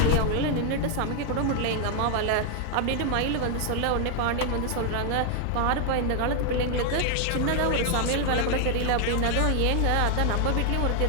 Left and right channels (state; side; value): different; both; correlation 0.00